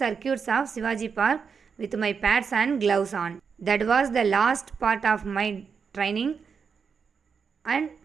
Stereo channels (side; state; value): left; quieter; 6.0 dB